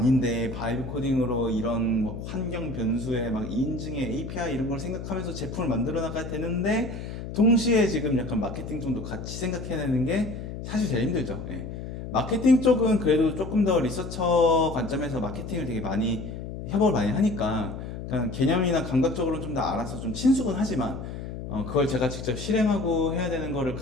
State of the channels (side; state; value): left; noise; hum, 8 dB below the sound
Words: 바이브 코딩으로 이런 뭐 환경 변수에 막 인증에 API 이런 걸 생각하면서 제품을 만들어 나가야 되는데 동시에 지금 약간 마케팅 쪽도 같이 생각해내는 게 사실 제일 힘들죠. 예. 마케팅 쪽은 그래도 조금 더 리서처 관점에서 마케팅을 되게 많이 협업을 많이 하니까 그냥 개념이나 감각적으로 좀 더 알아서 좀 친숙은 하지만 그걸 제가 직접 실행하고 해야 되는 거를